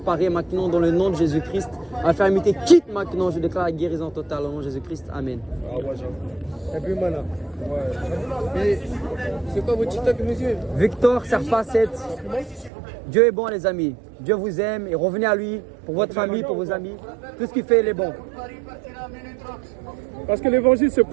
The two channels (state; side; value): drops out; left; at 12.7 s